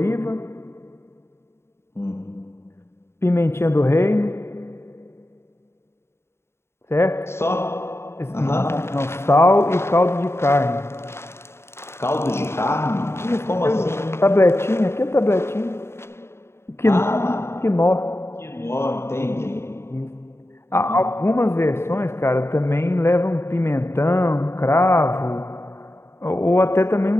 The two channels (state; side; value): late; right; 0.12 ms